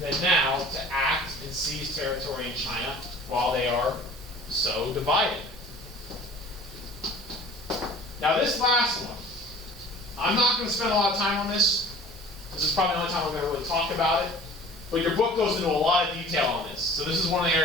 now to act and seize territory in China while they are so divided? Now this last one, I'm not going to spend a lot of time on this. This is probably the only time I'm going to really talk about it. But your book goes into a lot of detail on this. So this is one of the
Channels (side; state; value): both; normal; correlation 0.46